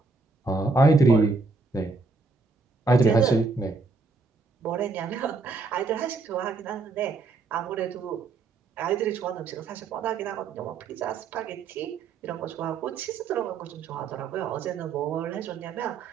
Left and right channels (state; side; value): quieter; left; 3.9 dB